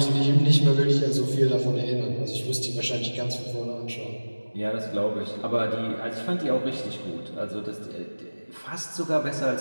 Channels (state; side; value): inverted; both; correlation -1.00